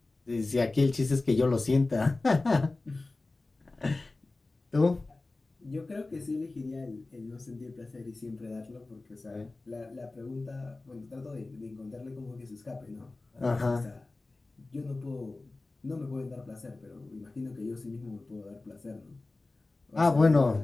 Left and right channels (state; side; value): quieter; right; 3.2 dB